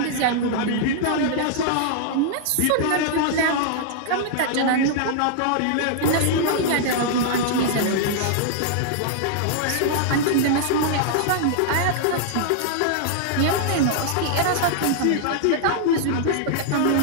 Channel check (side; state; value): both; different; correlation -0.01